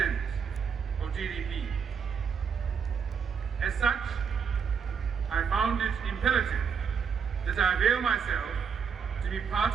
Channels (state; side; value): quieter; left; 6.5 dB